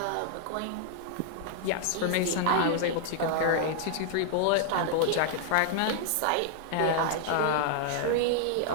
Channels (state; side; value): different; both; correlation -0.01